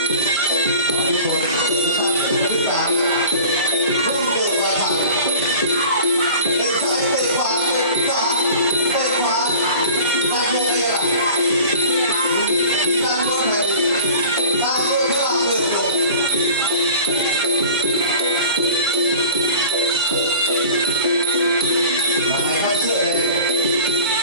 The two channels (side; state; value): both; inverted; correlation -0.42